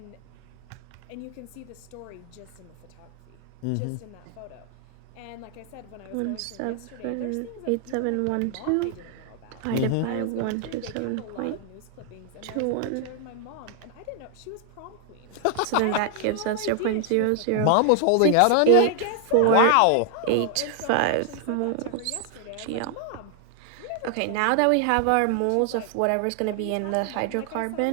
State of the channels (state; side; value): different; both; correlation 0.00